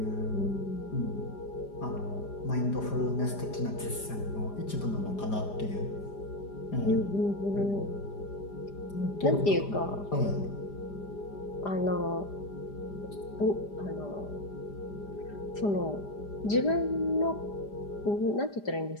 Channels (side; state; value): right; late; 5.0 ms